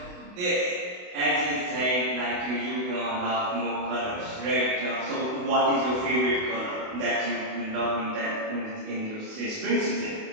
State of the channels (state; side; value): late; left; 28 ms